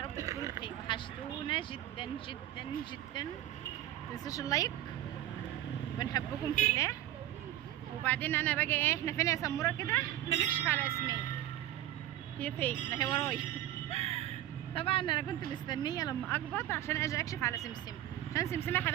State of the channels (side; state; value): left; quieter; 13.3 dB